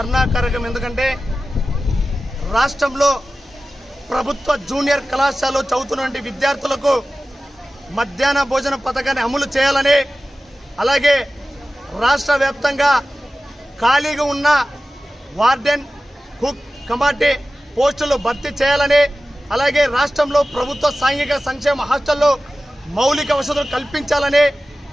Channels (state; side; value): normal; both; correlation 0.95